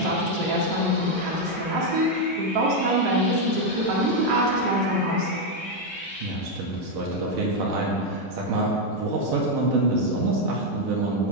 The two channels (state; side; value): normal; both; correlation 0.03